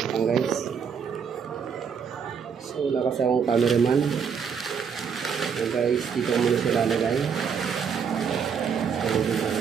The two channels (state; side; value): quieter; left; 6.8 dB